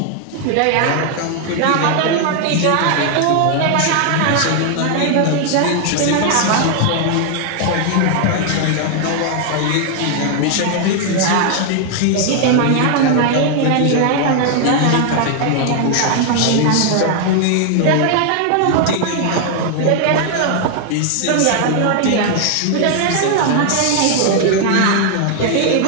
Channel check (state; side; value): different; both; correlation 0.00